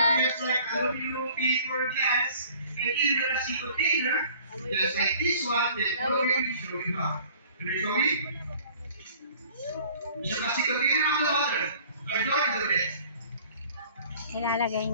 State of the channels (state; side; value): inverted; both; correlation -0.51